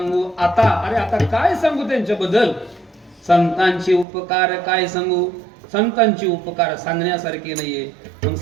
आता, अरे आता काय सांगू त्यांच्याबद्दल? संतांचे उपकार काय सांगू? संतांचे उपकार सांगण्यासारखे नाहीये. मग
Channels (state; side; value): drops out; left; at 4.0 s